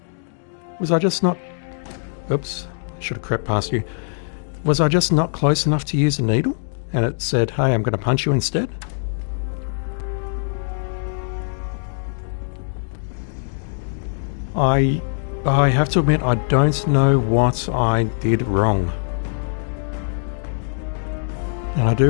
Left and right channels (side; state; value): right; silent; digital silence